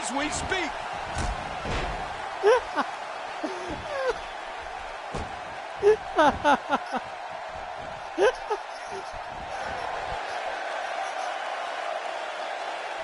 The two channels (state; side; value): identical; both; correlation 1.00